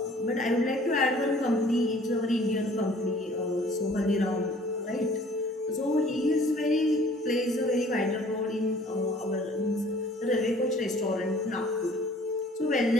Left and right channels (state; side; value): normal; both; correlation 0.53